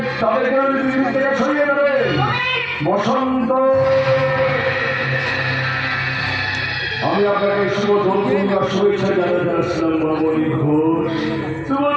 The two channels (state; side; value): identical; both; correlation 1.00